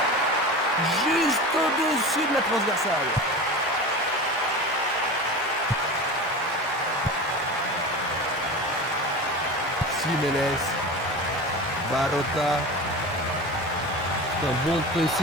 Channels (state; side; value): normal; both; correlation 0.30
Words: Juste au-dessus de la transversale. Jiménez. Barota. C'est un bon